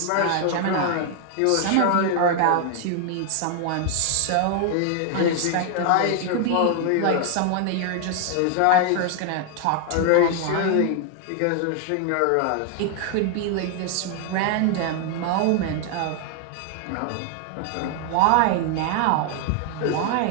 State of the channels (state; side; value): different; both; correlation 0.00